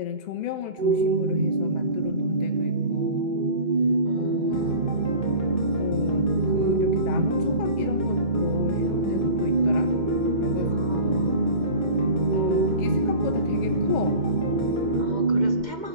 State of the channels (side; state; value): left; late; 2.0 ms